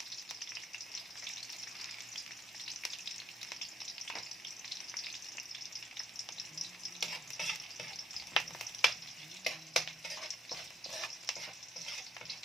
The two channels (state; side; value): normal; both; correlation 0.70